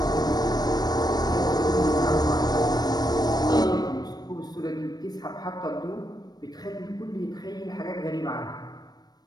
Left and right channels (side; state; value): right; late; 0.19 ms